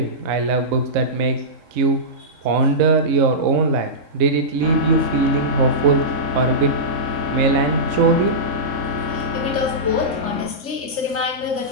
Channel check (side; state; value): left; late; 3.7 ms